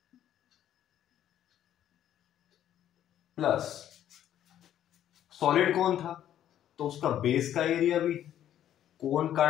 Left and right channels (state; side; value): quieter; right; 11.1 dB